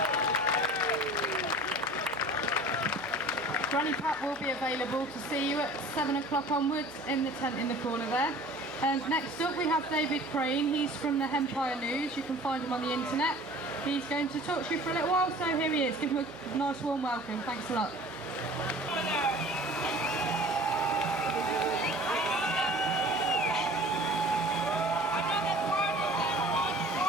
Granny Pat will be available to see you at 7 o'clock onwards in the tent in the corner there. Next up we have David Crane. He's from the Empire News. You can find him on the internet. He's going to talk to you for a little while, so here he is. Give him a nice warm welcome. Thanks a lot.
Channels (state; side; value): noise; right; hum, 21 dB below the sound